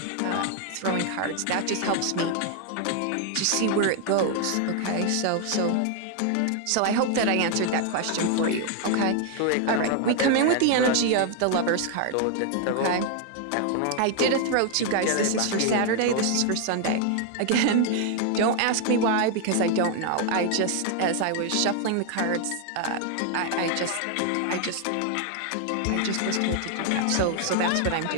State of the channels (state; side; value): different; both; correlation 0.00